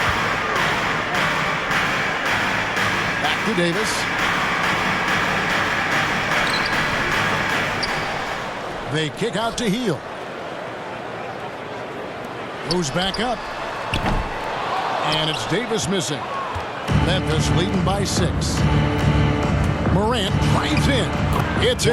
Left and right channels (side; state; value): both; identical; correlation 1.00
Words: Back to Davis. They kick out to Hield. Moves back up. And it's Davis missing. Memphis leading by 6. Morant drives in. It's